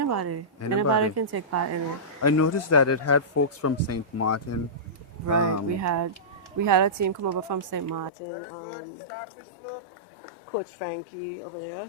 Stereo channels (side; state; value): right; drops out; at 8.1 s